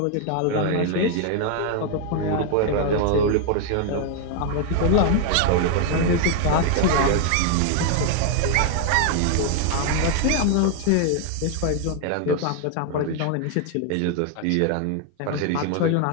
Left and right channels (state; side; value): different; both; correlation 0.00